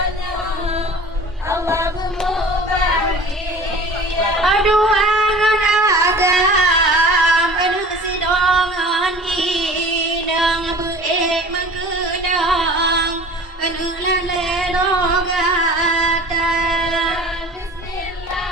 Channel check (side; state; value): both; normal; correlation 0.42